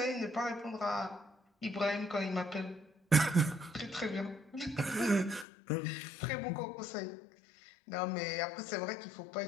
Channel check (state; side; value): drops out; right; at 5.5 s